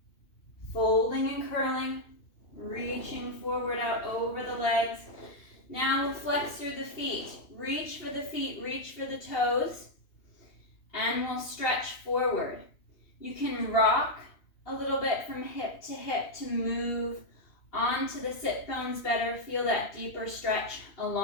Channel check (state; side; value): late; right; 2.8 ms